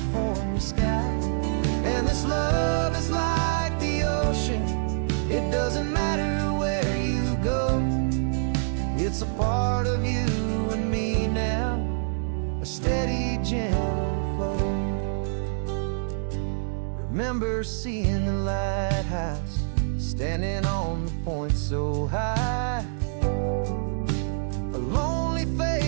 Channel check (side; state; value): left; silent; digital silence